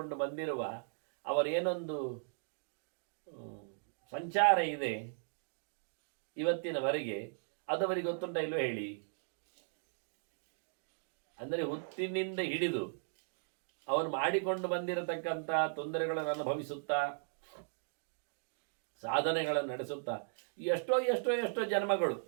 ಬಂದಿರುವ ಅವರೇನೊಂದು ಸಂಚಾರ ಇದೆ ಇವತ್ತಿನವರೆಗೆ, ಅದವರಿಗೆ ಗೊತ್ತುಂಟ ಇಲ್ವೋ ಹೇಳಿ? ಅಂದರೆ ಹುಟ್ಟಿನಿಂದ ಹಿಡಿದು ಅವರು ಮಾಡಿಕೊಂಡು ಬಂದಿರತಕ್ಕಂಥ ತೊಂದರೆಗಳನ್ನು ಅನುಭವಿಸುತ್ತಾ, ಸಾಧನೆಗಳನ್ನು ನಡೆಸುತ್ತಾ ಎಷ್ಟೋ ಎಷ್ಟೋ ಎಷ್ಟೋ ಜನ್ಮಗಳು,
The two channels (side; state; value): left; silent; digital silence